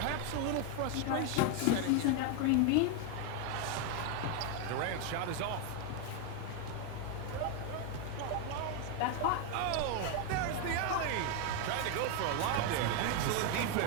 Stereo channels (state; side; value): different; both; correlation 0.01